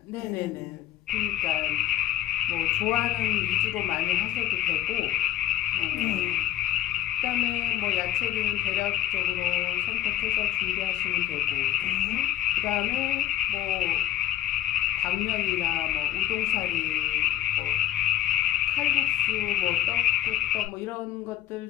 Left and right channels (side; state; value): right; quieter; 12.5 dB